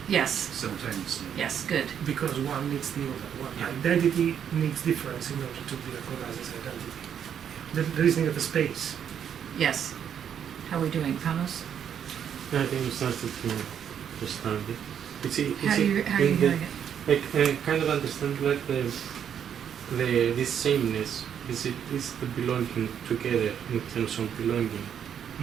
Yes. simultaneously. Yes. Good. Because one needs the other. One Yeah. identity needs difference in order to be recognized as identity. The reasoning of the space. Yes. How are we doing, Panos? I think we started to understand it. How are you hearing it? I kind of understand like this sameness is the belonging together in terms of belonging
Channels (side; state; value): left; quieter; 8.6 dB